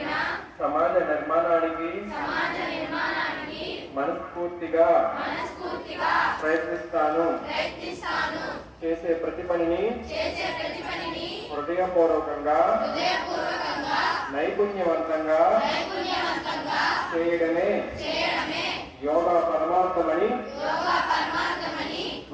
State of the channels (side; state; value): both; identical; correlation 1.00